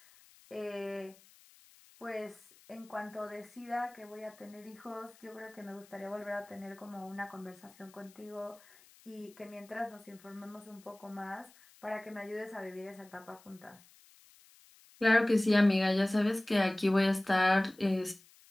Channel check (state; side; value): noise; left; hiss, 26 dB below the sound